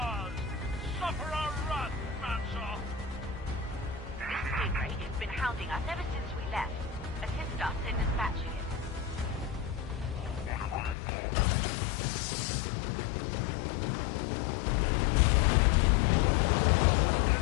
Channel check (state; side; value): drops out; right; at 11.0 s